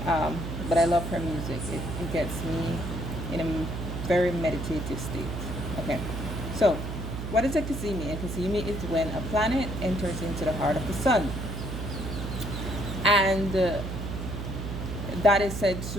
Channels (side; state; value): right; noise; hum, 5 dB below the sound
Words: But I love her music. It gets me in a very meditative state. Okay, so what is a Kazemi? A Kazemi is when a planet enters into the heart of the sun, and that is said